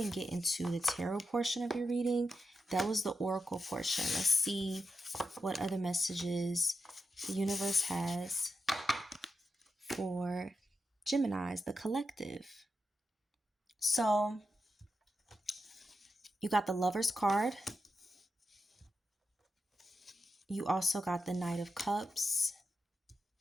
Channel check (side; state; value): both; normal; correlation 0.88